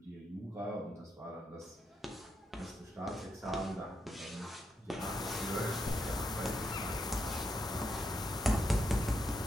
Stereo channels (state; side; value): normal; both; correlation 0.82